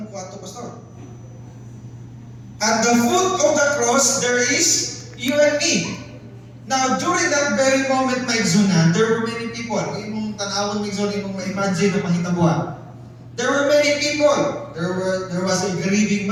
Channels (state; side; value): identical; both; correlation 1.00